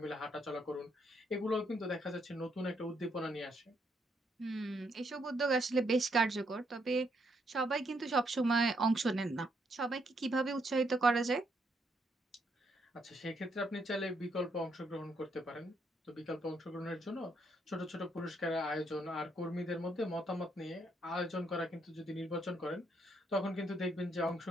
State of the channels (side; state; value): both; normal; correlation 0.75